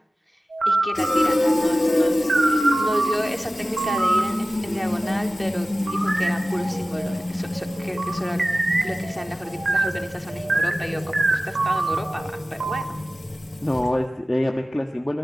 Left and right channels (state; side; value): normal; both; correlation 0.96